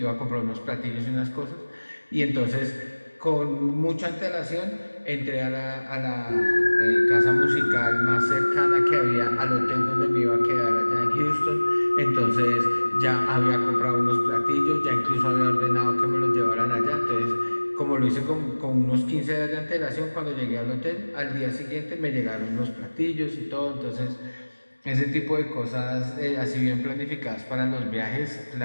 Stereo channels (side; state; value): both; inverted; correlation -1.00